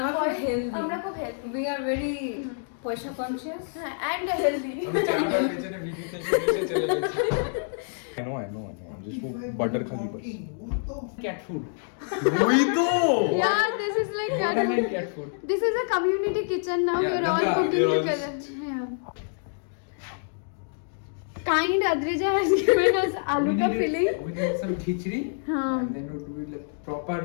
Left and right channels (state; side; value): silent; right; digital silence